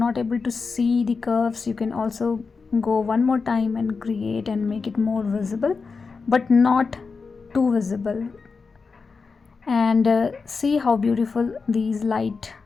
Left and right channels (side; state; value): right; quieter; 4.7 dB